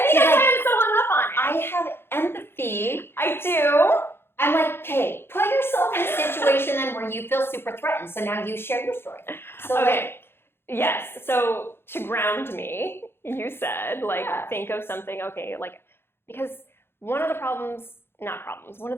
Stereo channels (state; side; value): late; right; 0.11 ms